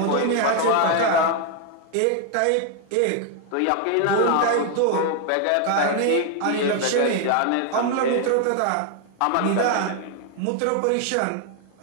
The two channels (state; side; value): different; both; correlation 0.01